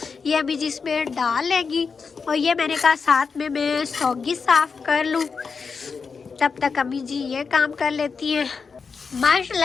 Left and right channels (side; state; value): right; quieter; 5.3 dB